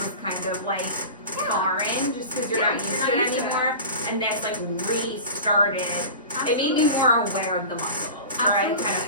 kind of like foreign, just because you're not used to it anymore. And this like restarted. It made me more aware of the muscles, or I kind of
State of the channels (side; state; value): both; inverted; correlation -0.34